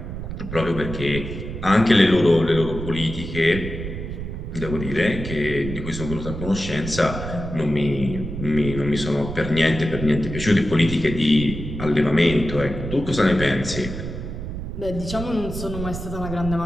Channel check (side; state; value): right; noise; rumble, 7 dB below the sound